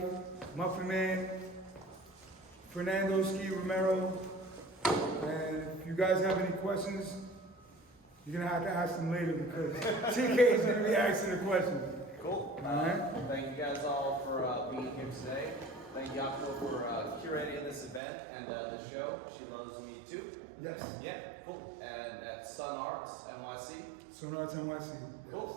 Muffin Man, Fernando Ski Romero. And if you guys have any questions, you're gonna have to ask them later because CK is gonna be asking the questions. Cool. Alright. Thank you guys all for being here today. Thank you, Optimal, for curating this event and the show. She Loves Me Too. Yes. Yeah, cool. And at Sun Arts NYC. Sun Arts NYC. Yes.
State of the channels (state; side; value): drops out; left; at 18.0 s